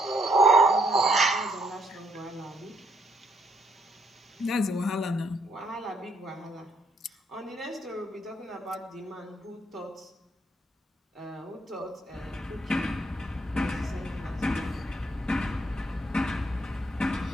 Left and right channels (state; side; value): normal; both; correlation 0.71